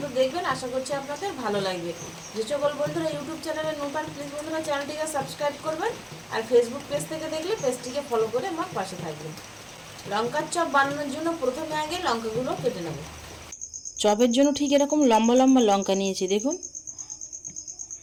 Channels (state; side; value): identical; both; correlation 1.00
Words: দেখবেন, আশা করছি আপনাদের ভালো লাগবে। যে সকল বন্ধুরা ইউটিউব চ্যানেলে নতুন, প্লিজ বন্ধুরা চ্যানেলটিকে সাবস্ক্রাইব করবেন, আর ফেসবুক পেজ থেকে দেখলে পেজটিকে ফলো করে আমার পাশে থাকবেন। লঙ্কার চপ বানানোর জন্য প্রথমে আগে লঙ্কাগুলো কেটে নেব। চপের জন্য ঠিক এরকম লম্বা লম্বা লঙ্কা নিয়েছি দেখুন।